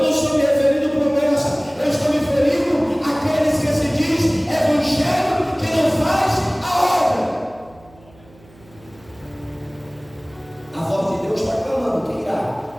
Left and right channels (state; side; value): noise; right; hum, 26 dB below the sound